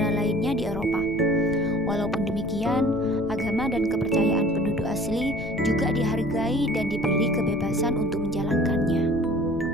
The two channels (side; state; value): left; noise; rumble, 12 dB below the sound